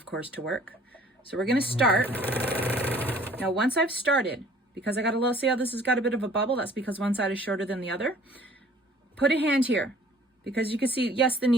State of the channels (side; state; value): both; normal; correlation 0.54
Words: course, to work. So we're going to start. Now, once I've started, because I got a little, see how this has got a bit of a bubble? That's because one side is shorter than the other. Put a hand here, because you can see, yes, the